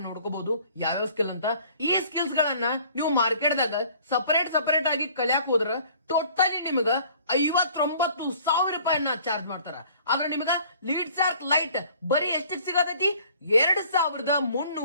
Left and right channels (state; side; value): inverted; both; correlation -0.53